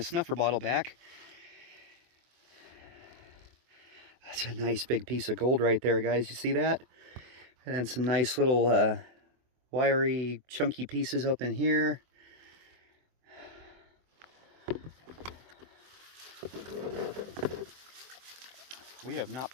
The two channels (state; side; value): late; left; 24 ms